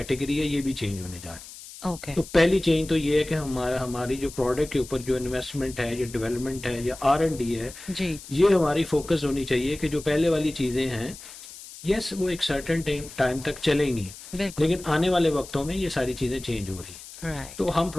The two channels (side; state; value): left; noise; hiss, 16 dB below the sound